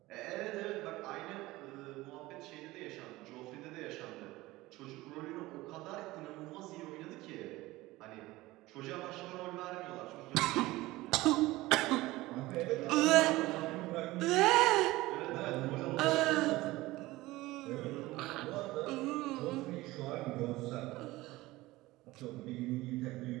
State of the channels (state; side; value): quieter; left; 18.9 dB